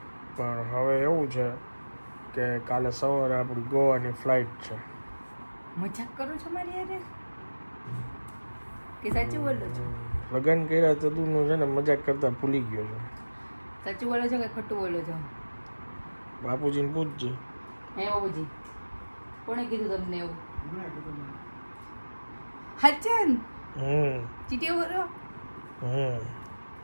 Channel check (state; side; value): inverted; both; correlation -1.00